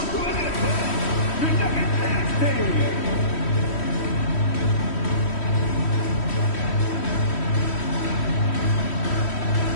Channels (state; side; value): late; right; 3.1 ms